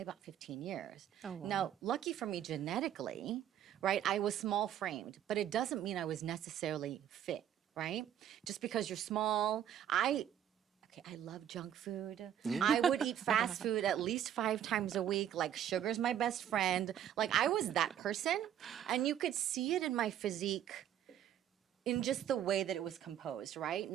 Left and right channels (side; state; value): left; quieter; 10.4 dB